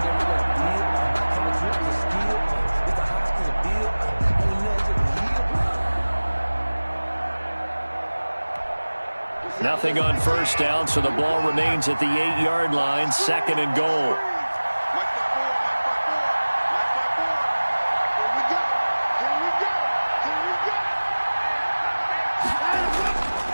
Nothing on first down, so the ball remains at the 8-yard line, 2nd and goal.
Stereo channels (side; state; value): both; inverted; correlation -1.00